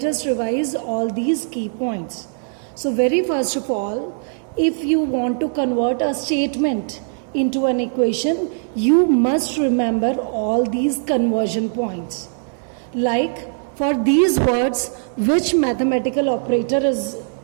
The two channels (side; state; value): left; silent; digital silence